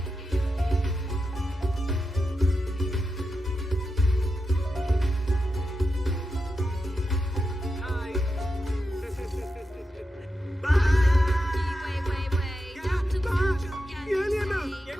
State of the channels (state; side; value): normal; both; correlation 0.89